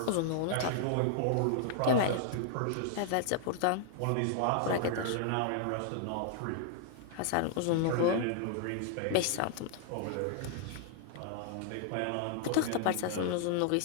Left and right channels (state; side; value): different; both; correlation -0.01